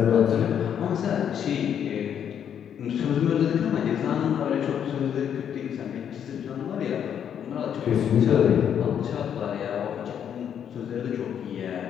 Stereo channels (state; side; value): quieter; right; 8.8 dB